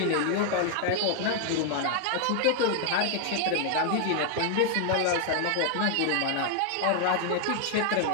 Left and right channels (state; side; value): different; both; correlation 0.00